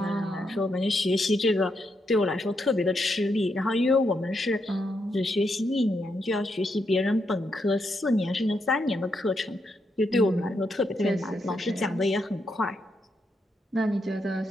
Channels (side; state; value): both; normal; correlation 0.81